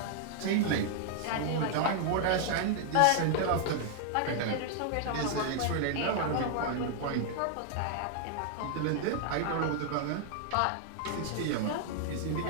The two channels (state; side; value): different; both; correlation 0.00